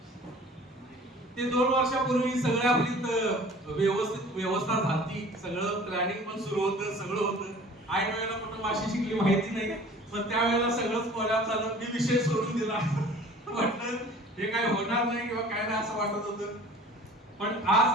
ते 2 वर्षापूर्वी सगळ्या आपली व्यवस्था झाली, सगळं प्लॅनिंग पण सुरू होतं, सगळं होतं. ऐन वेळेला कुठं माशी शिकली माहिती नाही, पण त्यावेळेला सगळंच कोल्यात झालं. मी विषय सोडून दिला, म्हटलं हे काय होणार नाही किंवा काय नाही असं वाटत होतं. पण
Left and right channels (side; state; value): both; normal; correlation 0.47